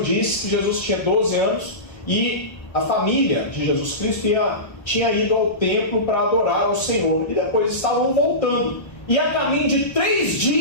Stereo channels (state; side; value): late; right; 1.3 ms